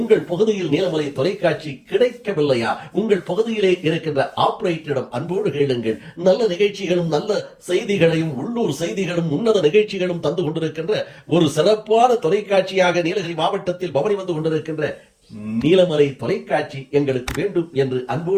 பகுதியில் நீலமலை தொலைக்காட்சி கிடைக்கவில்லையா, உங்கள் பகுதியிலே இருக்கின்ற ஆபரேட்டரிடம் அன்போடு கேளுங்கள். நல்ல நிகழ்ச்சிகளும் நல்ல செய்திகளையும் உள்ளூர் செய்திகளும் உன்னத நிகழ்ச்சிகளும் தந்து கொண்டிருக்கின்ற ஒரு சிறப்பான தொலைக்காட்சியாக நீலகிரி மாவட்டத்தில் பவனி வந்து கொண்டிருக்கின்ற நீலமலை தொலைக்காட்சி எங்களுக்கு வேண்டும் என்று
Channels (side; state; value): both; identical; correlation 1.00